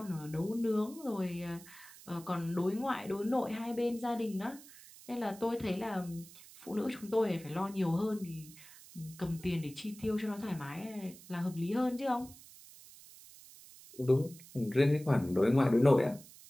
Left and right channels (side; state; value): right; noise; hiss, 19 dB below the sound